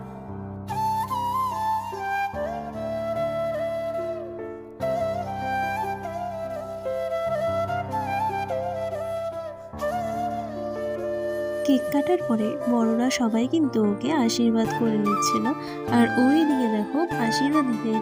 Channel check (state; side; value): identical; both; correlation 1.00